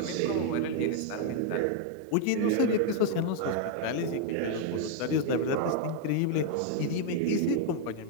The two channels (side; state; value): both; different; correlation 0.00